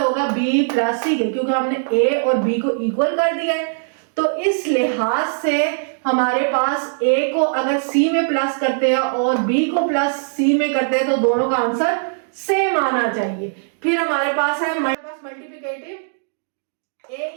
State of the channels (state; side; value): silent; left; digital silence